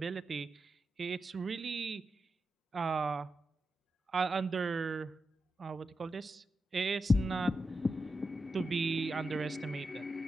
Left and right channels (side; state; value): both; normal; correlation 0.89